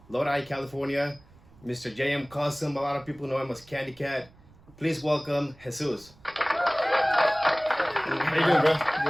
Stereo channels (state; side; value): noise; right; rumble, 26 dB below the sound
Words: Lodi, California, Mr. JM Custom. A lot of people know him as Candy Cat. Please welcome Jesus. How you doing, bro?